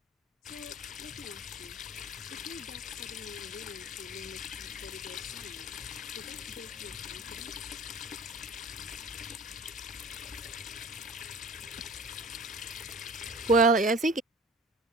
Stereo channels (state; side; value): normal; both; correlation 0.42